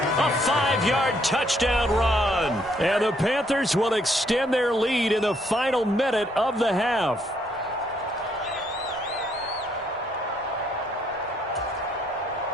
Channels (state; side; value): normal; both; correlation 0.70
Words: a 5-yard touchdown run. And the Panthers will extend their lead in the final minute of the half.